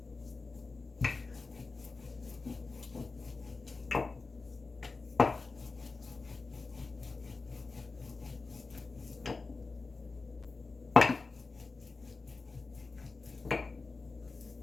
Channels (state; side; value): quieter; right; 4.0 dB